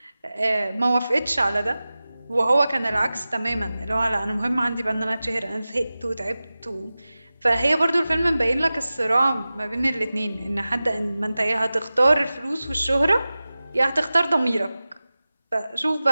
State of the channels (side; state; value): both; inverted; correlation -0.96